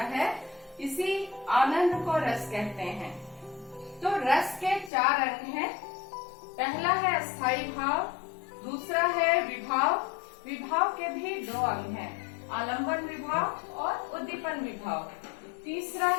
है, इसी आनंद को रस कहते हैं। तो रस के 4 अंग हैं। पहला है अस्थाई भाव, दूसरा है विभाव। विभाव के भी 2 अंग हैं, आलंबन विभाव और उद्दीपन विभाव। तीसरा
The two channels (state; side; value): drops out; right; at 4.9 s